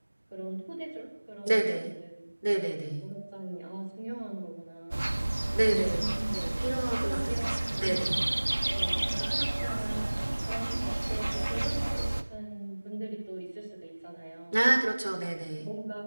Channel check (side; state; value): both; inverted; correlation -1.00